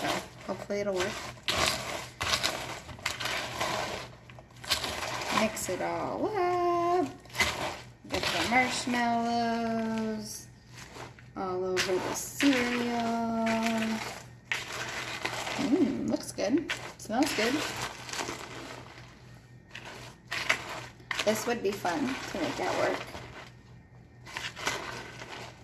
so hopefully it'll work. Mix it all up. Get the marshmallows all over the cereal. Looks good. Smells good. This would be fun to make that work.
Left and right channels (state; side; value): identical; both; correlation 1.00